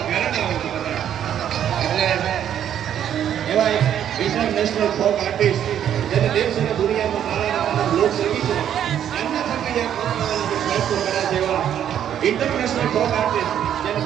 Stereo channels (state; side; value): quieter; left; 9.9 dB